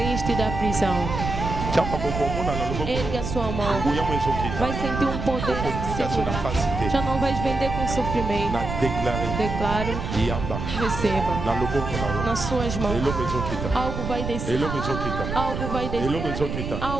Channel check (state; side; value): noise; right; rumble, 5 dB below the sound